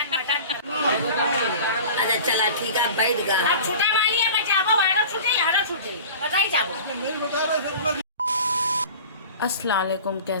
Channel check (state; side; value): inverted; both; correlation -0.39